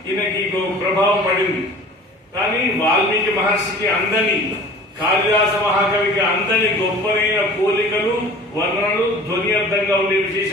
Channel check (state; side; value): normal; both; correlation 0.44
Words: ఈయనకి ప్రభావం పడింది. కానీ వాల్మీకి మహర్షికి అందని, కాళిదాస మహాకవికి అందని గొప్పనైన పోలికలు, వర్ణనలు, ధ్వని అర్థంగా ఉండే